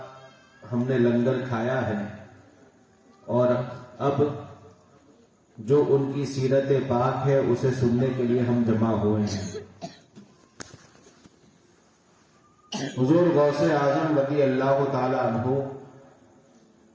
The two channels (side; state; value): both; identical; correlation 1.00